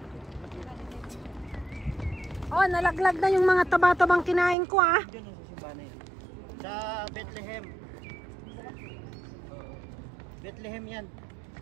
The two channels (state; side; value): drops out; left; at 4.5 s